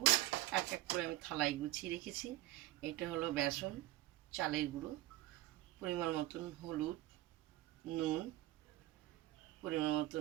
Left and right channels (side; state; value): left; quieter; 16.8 dB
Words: এক এক করে আমি থালায় গুছিয়ে রেখেছি। এটা হলো বেসন, চালের গুঁড়ো, পরিমাণ মতন হলুদ, নুন, পরিমাণ